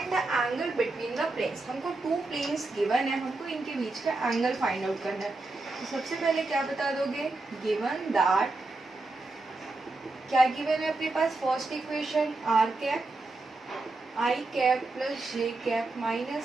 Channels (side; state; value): left; quieter; 3.2 dB